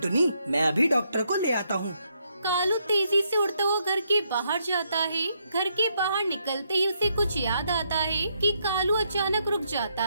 मैं अभी डॉक्टर को ले आता हूँ। कालू तेजी से उड़ता हुआ घर के बाहर जाता है। घर के बाहर निकलते ही उसे कुछ याद आता है कि कालू अचानक रुक जाता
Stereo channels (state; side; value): inverted; both; correlation -0.76